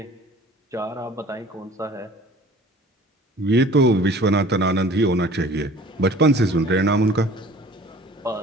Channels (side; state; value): both; normal; correlation 0.47